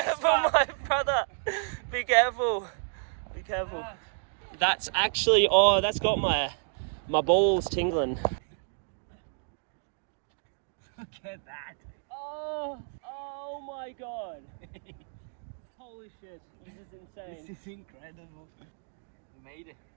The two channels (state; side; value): silent; left; digital silence